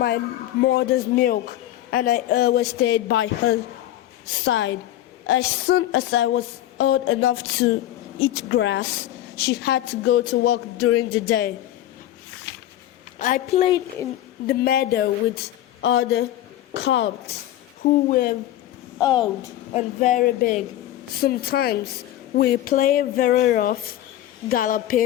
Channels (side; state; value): right; quieter; 13.3 dB